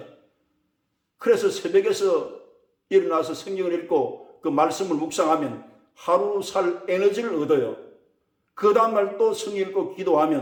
그래서 새벽에서 일어나서 성경을 읽고 그 말씀을 묵상하면 하루 살 에너지를 얻어요. 그 다음날 또 성경 읽고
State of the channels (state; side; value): identical; both; correlation 1.00